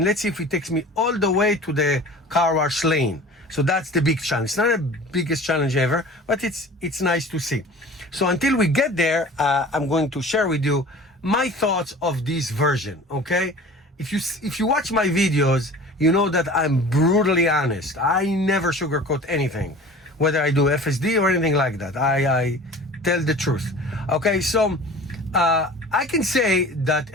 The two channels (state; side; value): normal; both; correlation 0.41